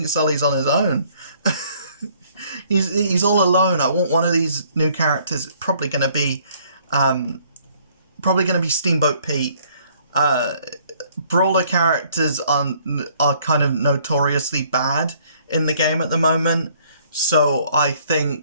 Sully's on his own. He's all alone. I want one of these new characters. It's probably going to be Steamboat Pete. Brawler characters are kind of notoriously bad in the game at the moment, so I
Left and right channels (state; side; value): inverted; both; correlation -0.61